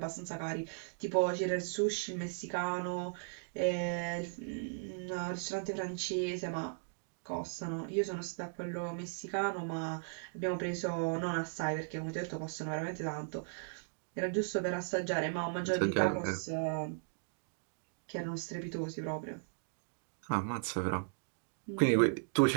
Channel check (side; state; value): left; silent; digital silence